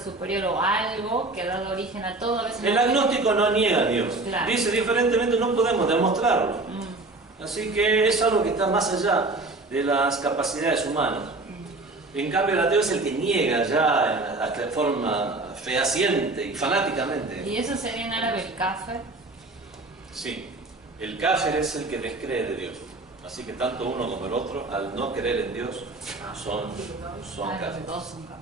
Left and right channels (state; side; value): quieter; left; 3.1 dB